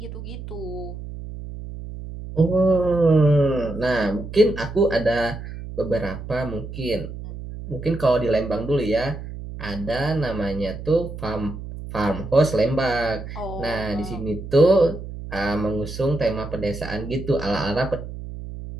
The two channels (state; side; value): noise; right; hum, 10 dB below the sound